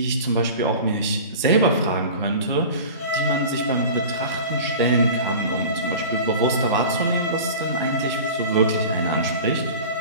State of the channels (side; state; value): both; inverted; correlation -0.36